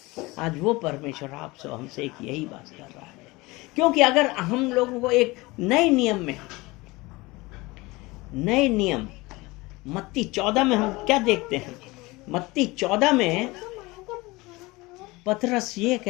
आज वो परमेश्वर आपसे हमसे एक यही बात कर रहा है। क्योंकि अगर हम लोगों को एक नए नियम मत्ती 14 में हम क्या देखते हैं? मत्ती 14 में पतरस ये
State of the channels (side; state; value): right; quieter; 22.3 dB